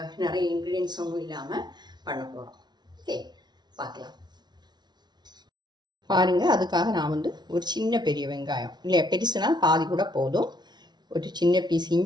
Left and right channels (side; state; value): left; late; 0.20 ms